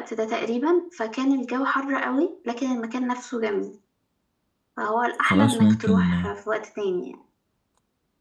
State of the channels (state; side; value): identical; both; correlation 1.00